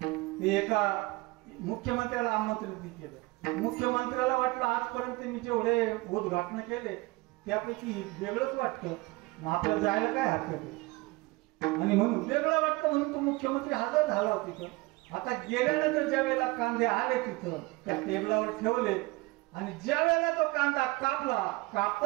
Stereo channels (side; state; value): left; quieter; 22.9 dB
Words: ते एका मुख्यमंत्र्याला आमंत्रित केलं. मुख्यमंत्र्याला वाटलं आजपर्यंत मी जेवढे उद्घाटन केले त्यापैकी वेगळंच वाटतं, आपल्याला जायला काय हरकत आहे. आणि म्हणून वेगळं वाटतं म्हणून तो मुख्यमंत्री हजर झाला होता तिथं. आता गेल्यानंतर ज्या वेळेला कांदे आले तिथं त्या टेबलावर ठेवले आणि ज्या वेळेला तो कांदा कापला,